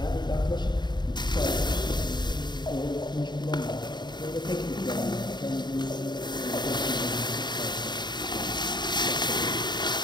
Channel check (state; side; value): late; right; 0.21 ms